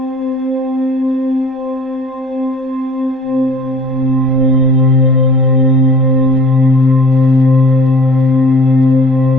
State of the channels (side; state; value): both; normal; correlation 0.50